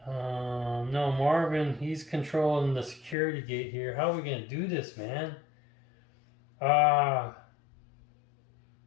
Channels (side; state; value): right; drops out; at 3.2 s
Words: No, Marvin, he's controlling the security gate here. How are we gonna do this, man?